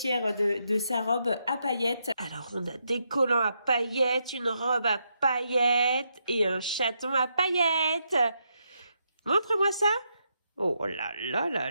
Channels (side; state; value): both; inverted; correlation -0.80